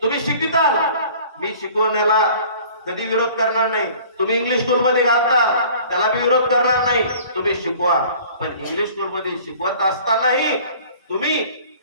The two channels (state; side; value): inverted; both; correlation -0.49